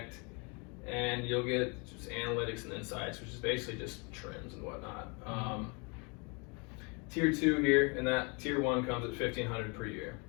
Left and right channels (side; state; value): right; quieter; 32.3 dB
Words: and you'll get just analytics and insights, which is basically just trends and whatnot. Tier 2 here, and that Tier 1 comes at $1,500 per year.